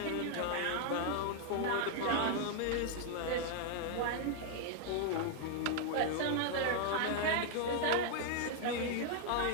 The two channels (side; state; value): both; different; correlation 0.00